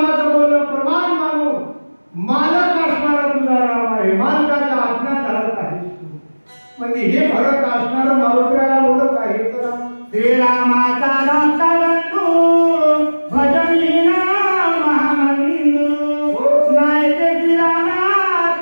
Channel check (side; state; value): both; inverted; correlation -1.00